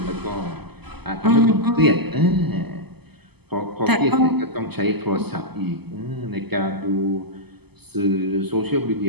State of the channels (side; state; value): left; late; 0.97 ms